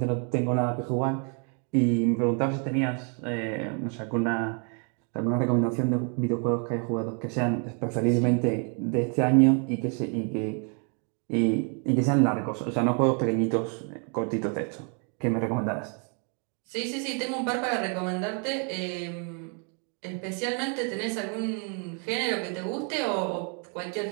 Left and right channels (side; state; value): left; quieter; 39.0 dB